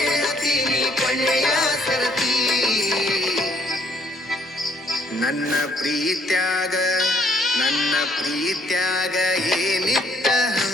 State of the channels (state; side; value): normal; both; correlation 0.65